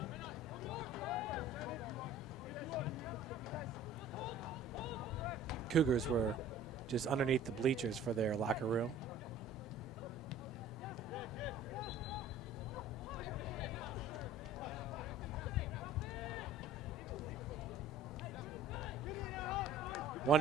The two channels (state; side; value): normal; both; correlation 0.47